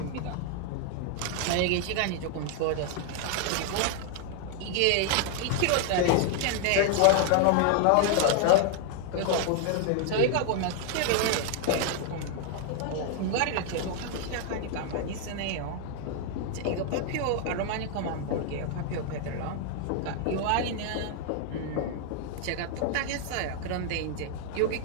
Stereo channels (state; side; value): different; both; correlation 0.00